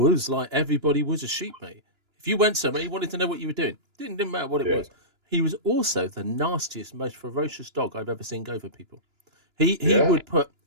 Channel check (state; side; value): late; left; 2.9 ms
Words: like everybody was a sheep, mate. If you went somewhere, he wanted to know what you were doing. Didn't matter what it was. He was also the nastiest, most ferocious dog I've ever seen go for people. He would put